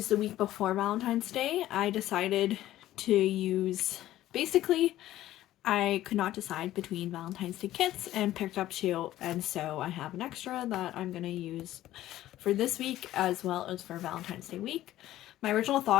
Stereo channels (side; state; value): right; quieter; 14.2 dB